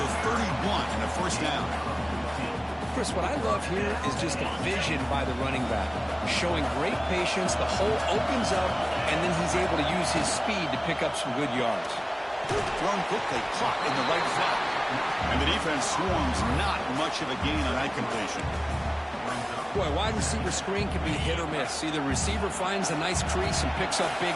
the 31 and a 1st down. Chris, what I love here is just the vision by the running back. Showing great patience, the hole opens up, and then he's able to use his speed to pick up some good yards. Thrown quickly, caught in the right flat. And the defense swarms, not much of a gain on that completion. Boy, wide receiver screen can be hit or miss. Either receiver finds a nice crease and picks up big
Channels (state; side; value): identical; both; correlation 1.00